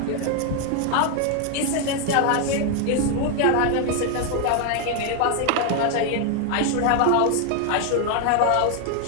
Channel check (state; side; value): different; both; correlation 0.00